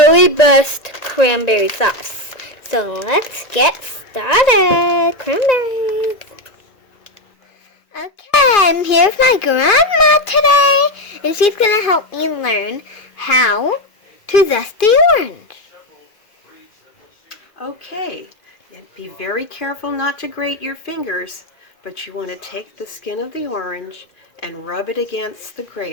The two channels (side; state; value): right; late; 2.5 ms